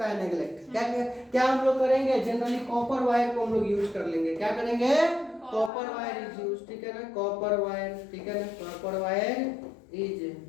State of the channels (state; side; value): drops out; right; at 5.7 s